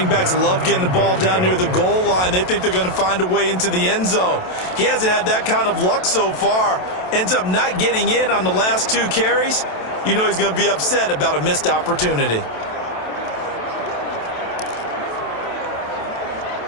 backs love getting the ball down near the goal line. They think they're going to find a way into the end zone. He hasn't had that kind of luck so far. Ends up not getting in on the last 2 carries. You know he's going to be upset about a missed opportunity.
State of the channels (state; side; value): late; right; 27 ms